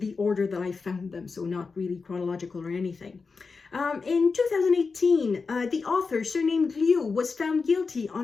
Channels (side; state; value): right; quieter; 4.6 dB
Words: order that I found them, so not really chronological or anything. In 2018, the author, surnamed Liu, was found guilty